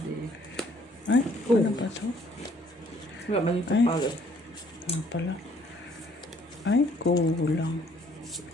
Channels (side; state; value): both; normal; correlation 0.62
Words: eh. Ay, ano ba to? Wala ba yung Ay. kapagod? Ano pala? Ay, kulang.